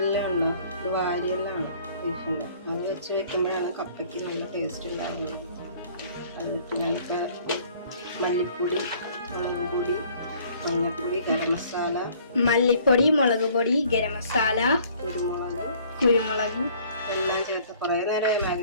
അത് വെച്ച് വെക്കുമ്പോഴാണ് കപ്പയ്ക്ക് നല്ല ടേസ്റ്റ് ഉണ്ടാകുന്നത്. അതിട്ട് നമുക്ക് മല്ലിപ്പൊടി, മുളക് പൊടി, മഞ്ഞൾപ്പൊടി, ഗരം മസാല, മല്ലിപ്പൊടി, മുളക് പൊടി, ഗരം മസാല, കുരുമുളക് എല്ലാം ചേർത്ത് കുറേ നേരം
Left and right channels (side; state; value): both; inverted; correlation -0.56